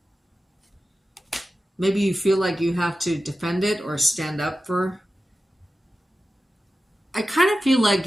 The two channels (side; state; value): both; normal; correlation 0.93